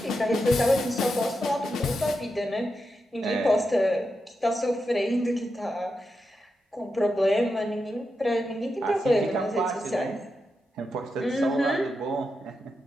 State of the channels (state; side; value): normal; both; correlation 0.87